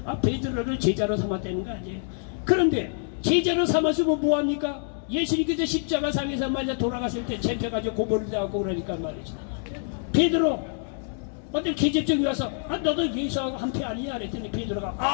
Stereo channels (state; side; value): silent; right; digital silence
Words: 아 베드로를 제자로 삼았다는 거 아니에요. 그런데 제자로 삼았으면 뭐합니까? 예수님께서 십자가상에서 말이죠 돌아갔을 때 잡혀가지고 고문을 당하고 그러니까 말이죠 베드로 어떤 계집종이 와서 아 너도 예수하고 한패 아니냐 그랬더니 베드로가